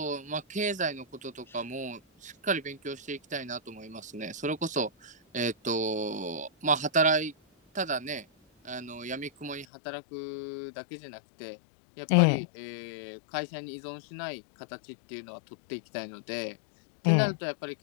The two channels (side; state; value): right; drops out; at 9.7 s